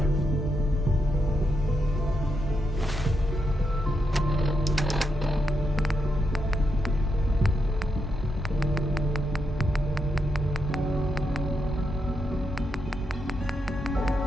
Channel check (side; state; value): both; normal; correlation 0.82